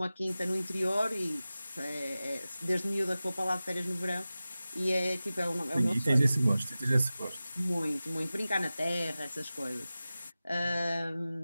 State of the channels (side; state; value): both; inverted; correlation -0.96